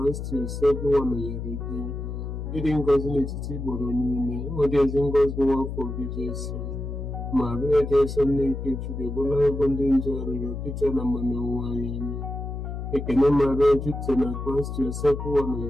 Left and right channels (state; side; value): noise; left; hum, 6 dB below the sound